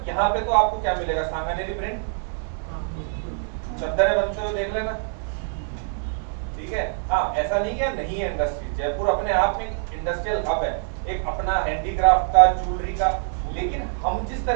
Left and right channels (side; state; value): left; silent; 62 dB below the other